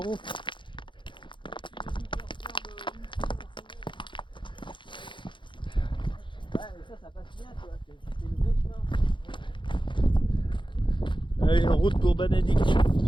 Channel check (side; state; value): right; late; 0.23 ms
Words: Ouais, mais ça passe bien, tu vois. C'est le vrai chemin. Allez, en route pour Banadik.